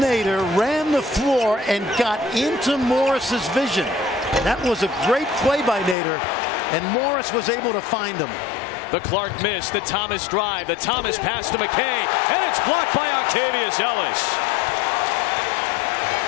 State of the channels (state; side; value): drops out; right; at 6.0 s